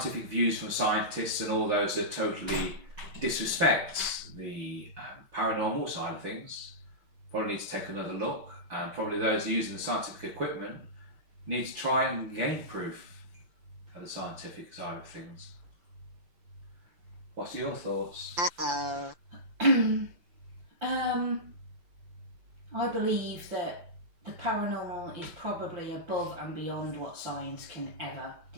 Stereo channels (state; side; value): late; left; 5.8 ms